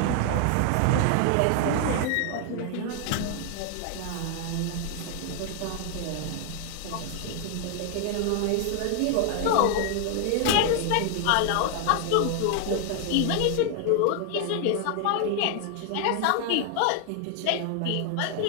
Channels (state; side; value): different; both; correlation 0.00